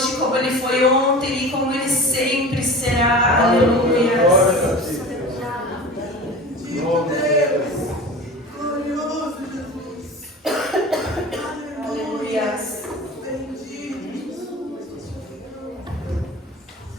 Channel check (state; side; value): normal; both; correlation 0.35